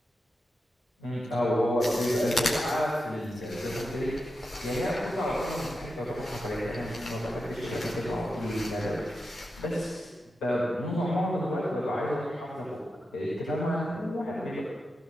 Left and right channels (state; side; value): normal; both; correlation 0.89